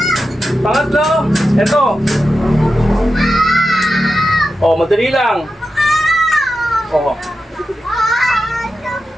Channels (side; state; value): both; normal; correlation 0.90